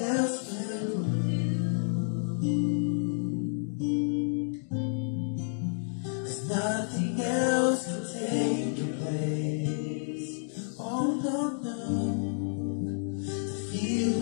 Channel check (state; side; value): silent; right; digital silence